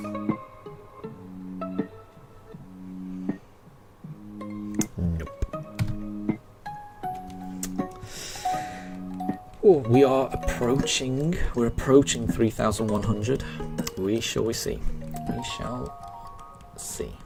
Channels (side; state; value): both; identical; correlation 1.00